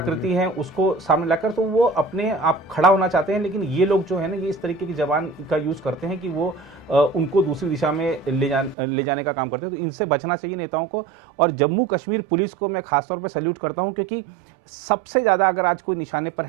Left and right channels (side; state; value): left; drops out; at 8.8 s